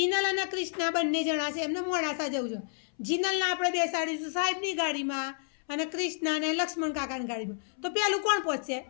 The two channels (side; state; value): right; silent; 57 dB below the other